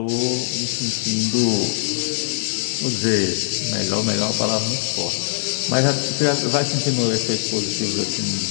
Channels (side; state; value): right; silent; digital silence